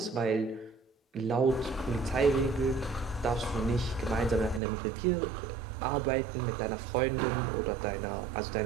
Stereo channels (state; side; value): drops out; left; at 4.6 s